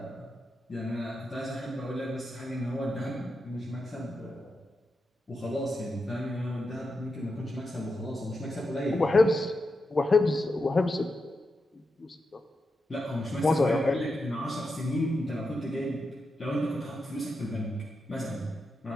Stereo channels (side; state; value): both; normal; correlation 0.87